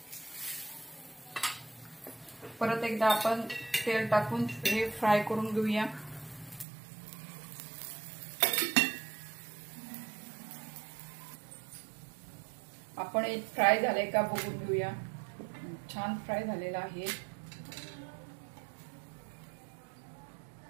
परत एकदा आपण तेल टाकून हे फ्राय करून घेऊया. आपण एक फ्राय झालंय का बघून घेऊया. छान फ्राय झालेला आहे.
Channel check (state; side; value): drops out; left; at 6.7 s